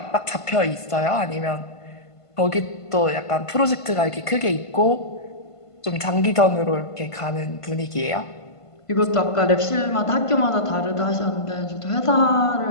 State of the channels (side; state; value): right; late; 1.5 ms